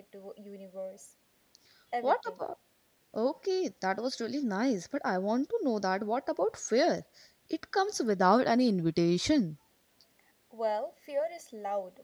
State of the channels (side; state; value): both; identical; correlation 1.00